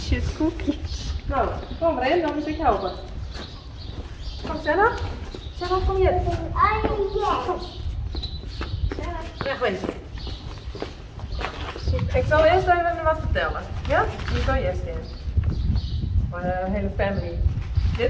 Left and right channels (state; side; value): identical; both; correlation 1.00